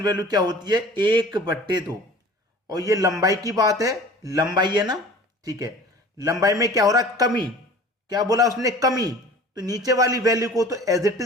वैल्यू क्या होती है? 1/2। और ये लंबाई की बात है, लंबाई है ना। ठीक है, लंबाई में क्या हो रहा है? कमी। क्या बोला उसने? कमी। तो नीचे वाली वैल्यू को तो एज इट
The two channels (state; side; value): normal; both; correlation 0.44